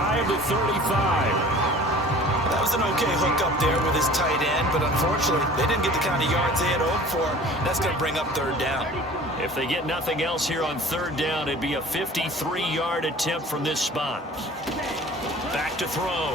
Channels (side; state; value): both; normal; correlation 0.45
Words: of the 35. That was an okay hook up there with his tight end, but unfortunately, they didn't get the kind of yards they had hoped for. That's going to bring up 3rd down. If they get nothing else here on 3rd down, it'd be a 53-yard attempt from this spot. Back to